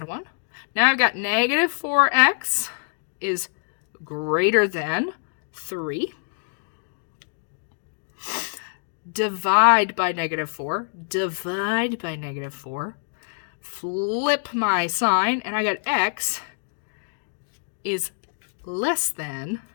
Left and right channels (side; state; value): right; silent; digital silence